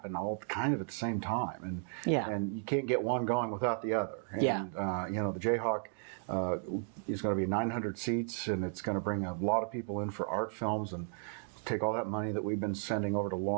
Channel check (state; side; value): silent; left; 55 dB below the other